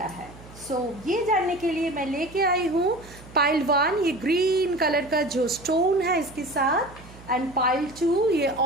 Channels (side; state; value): right; noise; hum, 20 dB below the sound